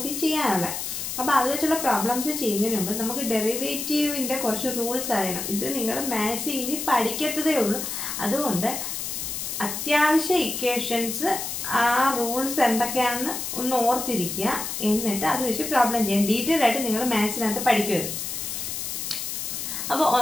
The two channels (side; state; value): left; noise; hiss, 4 dB below the sound